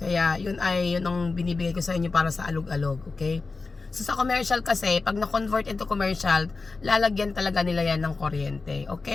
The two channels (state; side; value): quieter; right; 4.0 dB